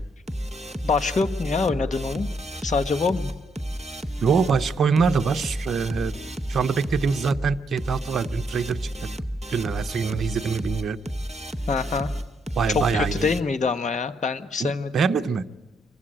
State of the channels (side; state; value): both; normal; correlation 0.75